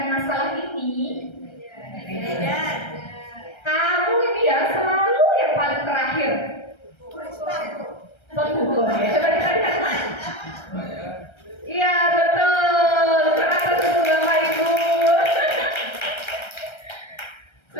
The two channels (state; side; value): late; right; 1.3 ms